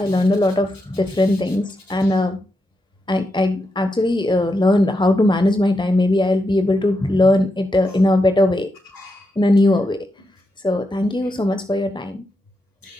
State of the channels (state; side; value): normal; both; correlation 0.85